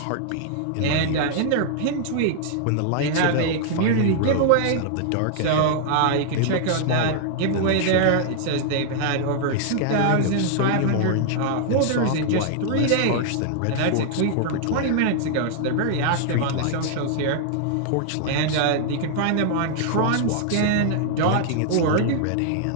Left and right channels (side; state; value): both; different; correlation -0.01